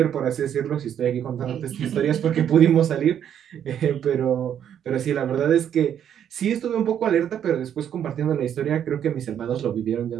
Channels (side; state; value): left; quieter; 9.4 dB